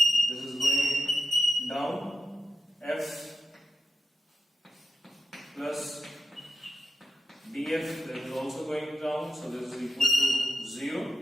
this is going down, F plus df, that is also going down, so this is equal to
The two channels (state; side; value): normal; both; correlation 0.88